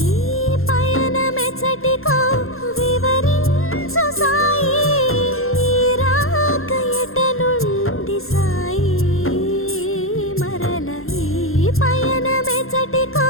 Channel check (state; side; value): late; right; 0.61 ms